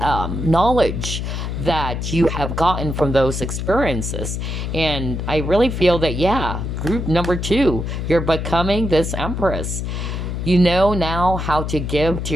that you have gotten from those experiences. And I really feel that, yeah, group number 2, you're becoming this Empress. You know now how to give to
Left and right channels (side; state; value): left; noise; hum, 3 dB below the sound